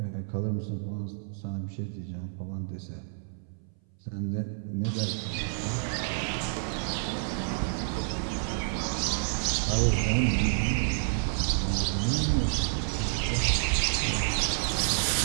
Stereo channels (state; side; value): silent; left; 58 dB below the other